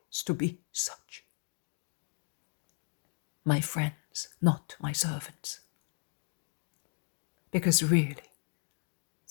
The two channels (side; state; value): right; silent; 54 dB below the other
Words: to be such. My friends, not my servants. Because really,